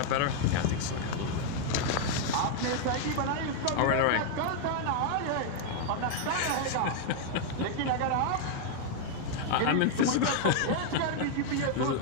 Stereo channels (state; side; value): different; both; correlation 0.00